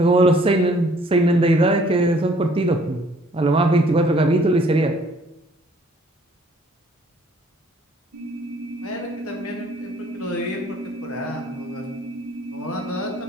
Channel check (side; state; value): both; normal; correlation 0.60